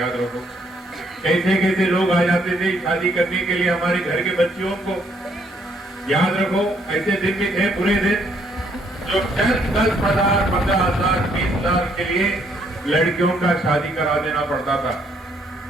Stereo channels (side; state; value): both; normal; correlation 0.69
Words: रखो। कैसे कैसे लोग आ जाते थे शादी करने के लिए हमारे घर के बच्चियों को। याद रखो, ऐसे दिन भी थे बुरे दिन जो 10,000, 15,000, 20,000 के लिए लड़कियों का शादी करा देना पड़ता था।